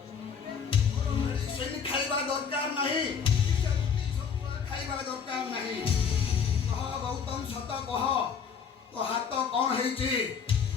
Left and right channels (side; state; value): right; quieter; 6.7 dB